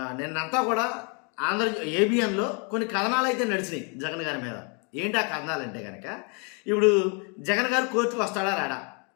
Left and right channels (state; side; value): quieter; right; 35.9 dB